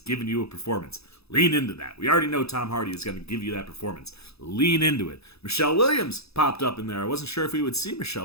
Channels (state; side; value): late; right; 0.78 ms